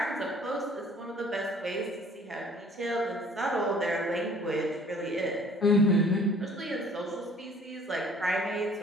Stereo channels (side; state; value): both; normal; correlation 0.53